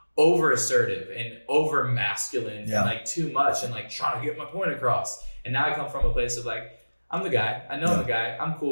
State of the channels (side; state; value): both; inverted; correlation -1.00